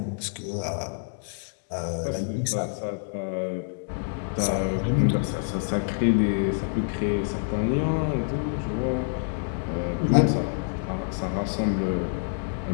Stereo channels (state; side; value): silent; right; digital silence